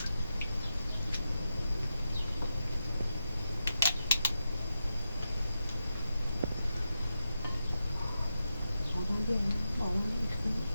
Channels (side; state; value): both; inverted; correlation -0.88